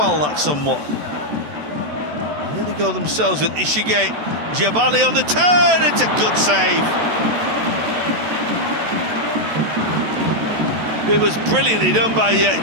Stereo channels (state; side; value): late; left; 14 ms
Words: that somewhat. Here they go themselves with Ishige. Giabali on the turn, it's a good save. It was brilliantly done by